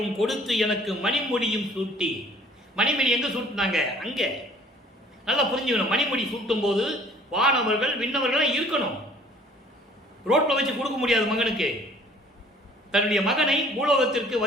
கொடுத்து எனக்கு மணிமுடியும் சூட்டி. மணிமுடி எங்க சூட்டினாங்க? அங்க. நல்லா புரிஞ்சுக்கணும். மணிமுடி சூட்டும் போது வானவர்கள் விண்ணவர்கள் இருக்கணும். ரோட்ல வச்சு கொடுக்க முடியாது மகனுக்கு. தன்னுடைய மகனை பூலோகத்திற்கு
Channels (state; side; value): normal; both; correlation 0.55